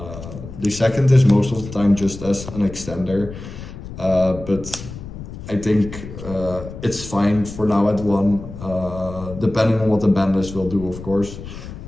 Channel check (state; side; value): noise; left; rumble, 12 dB below the sound